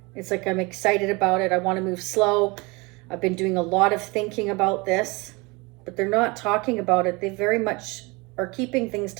It's like, I'm excited about it. I want to move slow. I've been doing a lot of thinking about this, but they're not talking about it. They very much are keeping things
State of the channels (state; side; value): quieter; left; 26.1 dB